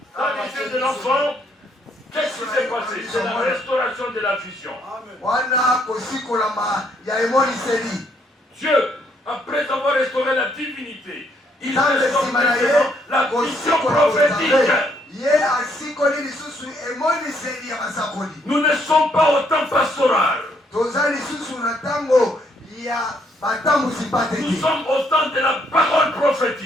dans les yeux de l'enfant, qu'est-ce qui s'est passé? C'est la restauration de la vision. wana kosikolama ya emoniseli. Dieu, après avoir restauré la divinité, il nzambe restaure nsima na ye maintenant la vision kosikola prophétique. kozambe, ye asikoli lisusu emoniseli ya basakoli. Nous ne sommes pas au temps pastoral. toza lisusu na ntango ya batambusi Nous pateki, sommes au temps de la parole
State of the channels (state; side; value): normal; both; correlation 0.70